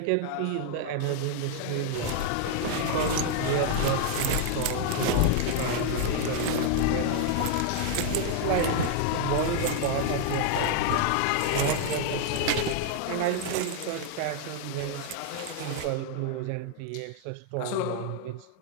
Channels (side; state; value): both; different; correlation 0.00